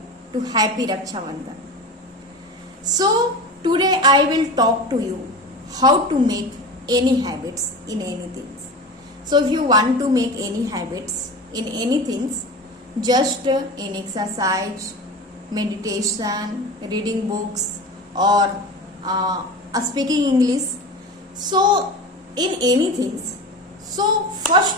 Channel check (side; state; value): both; normal; correlation 0.30